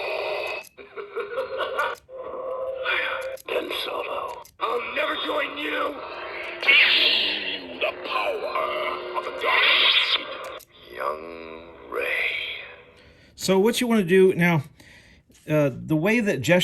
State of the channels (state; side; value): identical; both; correlation 1.00